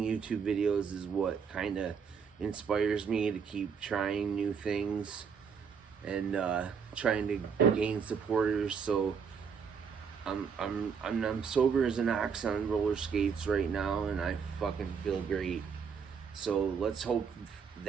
YouTube videos is, what kind of inspires me to keep trying new things and trying to gain supporters. So I'm sober as an ox on roller skates right now, and I fucking feel great. So let's hope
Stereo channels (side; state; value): left; quieter; 6.4 dB